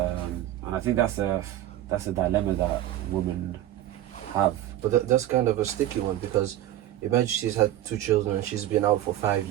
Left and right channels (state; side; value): quieter; left; 13.1 dB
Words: I think that's a dilemma that women have. But that's kind of a sticky one because imagine she's had 2 children and she's been out for 5